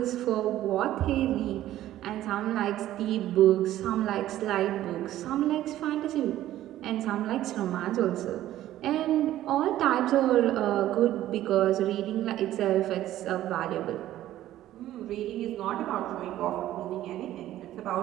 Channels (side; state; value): left; quieter; 13.6 dB